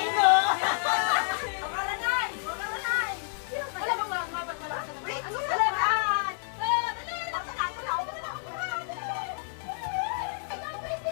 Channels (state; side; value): silent; right; digital silence